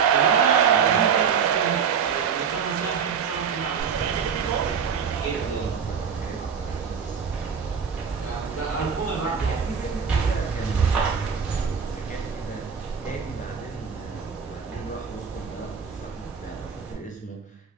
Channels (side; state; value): left; quieter; 6.6 dB